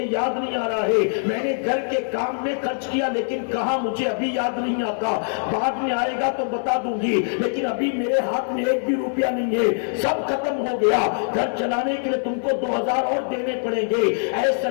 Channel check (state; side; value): silent; right; 57 dB below the other